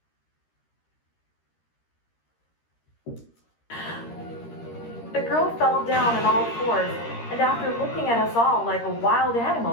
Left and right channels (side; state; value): right; late; 13 ms